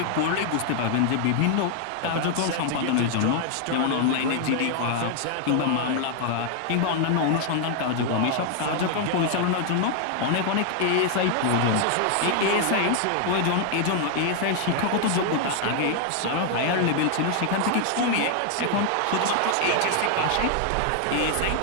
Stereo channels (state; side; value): different; both; correlation 0.00